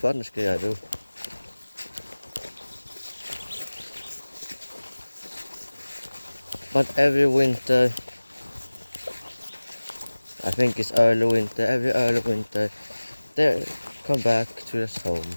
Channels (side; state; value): both; inverted; correlation -1.00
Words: things I do. But every winter, I think it's early winter, every early winter, they come back to their homes